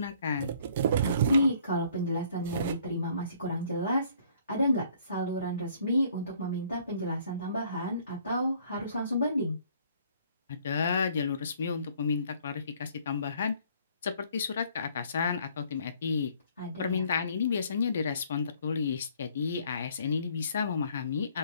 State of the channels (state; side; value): inverted; both; correlation -0.61